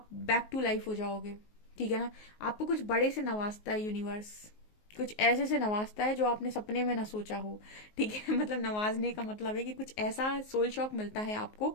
बैक टू लाइफ हो जाओगे, ठीक है ना। आपको कुछ बड़े से नवाजता है यूनिवर्स, कुछ ऐसे से नवाजता है जो आपने सपने में ना सोचा हो, ठीक है। मतलब नवाजने का मतलब है कि कुछ ऐसा सोल शॉक मिलता है आपको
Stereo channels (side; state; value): right; late; 19 ms